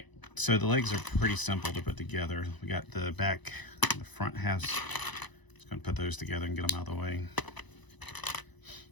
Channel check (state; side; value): late; right; 1.0 ms